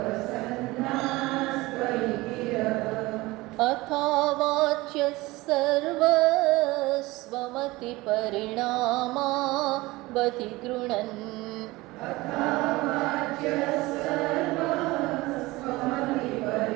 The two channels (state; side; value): quieter; left; 20.7 dB